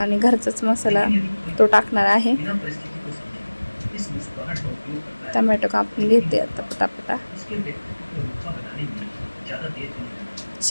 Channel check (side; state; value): both; inverted; correlation -1.00